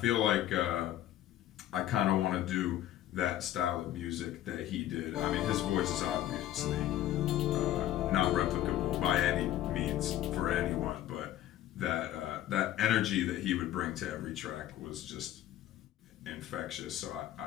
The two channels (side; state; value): right; quieter; 13.0 dB